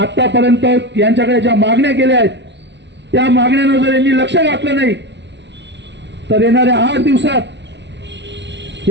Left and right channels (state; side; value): late; left; 0.51 ms